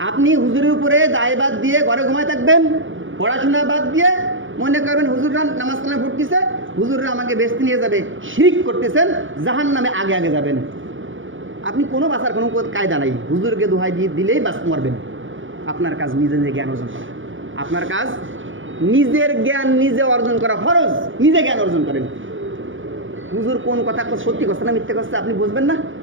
আপনি হুজুরের উপরে দায়বাদ দিয়ে ঘরে ঘুমায় থাকবেন, পড়াশোনা বাদ দিয়ে মনে করবেন হুজুররা নামাজ কালাম পড়তেছে, হুজুররা আমাকে বেচতে নিয়ে যাবে, শিরক করতেছেন, জাহান্নামে আগে যাবেন। আপনি কোনো বাঁচার কোনো কায়দা নাই, হুজুরকে দোহাই দিয়ে দিলেই বাঁচ মরবেন। আপনার কাজ নিজে জ্ঞান অর্জন করা, আপনার কাজ নিজের জ্ঞান নিজে অর্জন করা ফরজ, নিজে জ্ঞান অর্জন করেন। হুজুর কোন কথা সত্যি করছে না মিথ্যে করছে আপনি বুঝবেন না,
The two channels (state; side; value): late; left; 0.57 ms